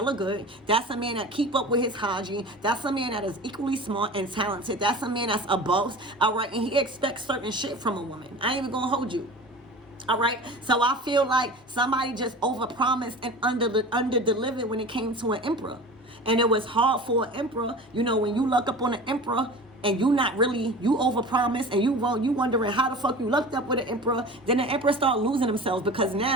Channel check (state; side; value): normal; both; correlation 0.36